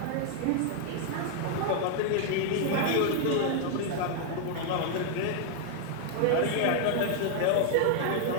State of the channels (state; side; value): different; both; correlation 0.00